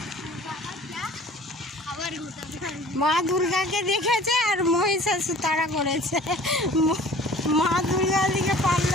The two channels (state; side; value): normal; both; correlation 0.47